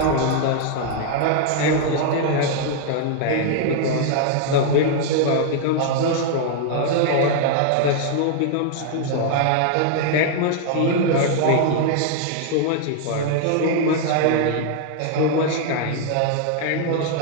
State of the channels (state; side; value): different; both; correlation 0.00